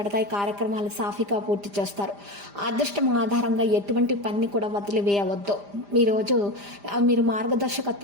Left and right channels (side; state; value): left; late; 5.0 ms